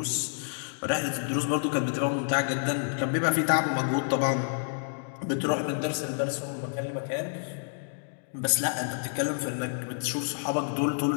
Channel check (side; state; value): right; silent; digital silence